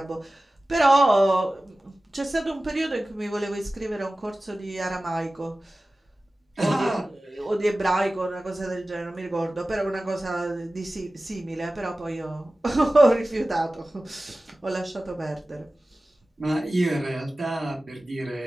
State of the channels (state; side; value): normal; both; correlation 0.96